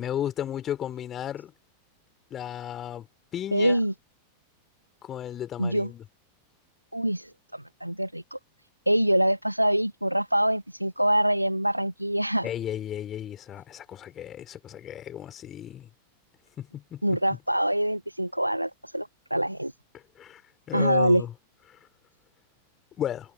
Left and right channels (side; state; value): both; inverted; correlation -0.83